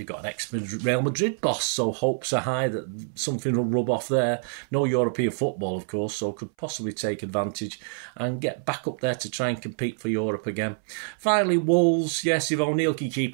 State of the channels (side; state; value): left; silent; 61 dB below the other